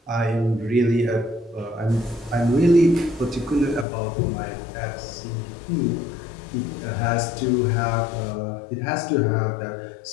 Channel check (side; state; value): right; drops out; at 3.9 s